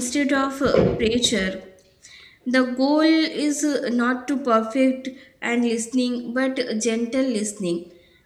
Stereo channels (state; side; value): identical; both; correlation 1.00